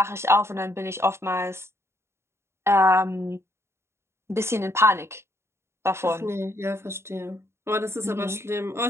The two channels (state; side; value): late; left; 0.13 ms